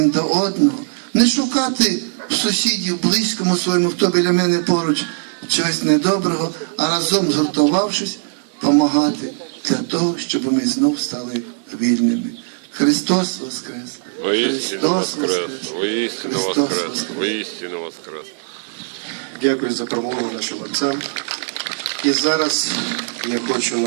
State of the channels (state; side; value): silent; left; 60 dB below the other